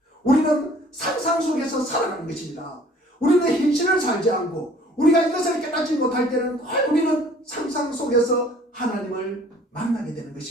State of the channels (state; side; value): normal; both; correlation 0.54